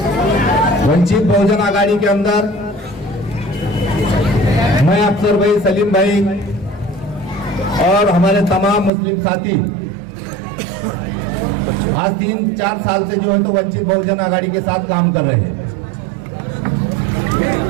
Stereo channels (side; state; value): left; drops out; at 8.9 s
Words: वंचित बहुजन अघाड़ी के अंदर मैं अफसर भाई, सलीम भाई और हमारे तमाम मुस्लिम साथी आज 3-4 साल से जो है तो वंचित बहुजन अघाड़ी के साथ काम कर रहे हैं।